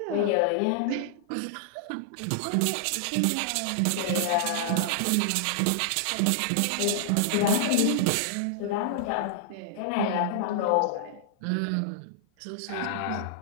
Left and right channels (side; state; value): both; different; correlation -0.01